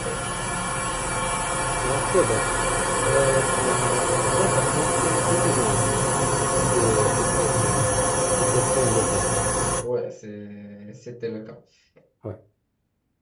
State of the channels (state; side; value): identical; both; correlation 1.00